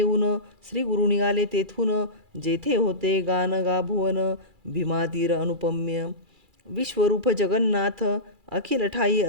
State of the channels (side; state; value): left; late; 2.3 ms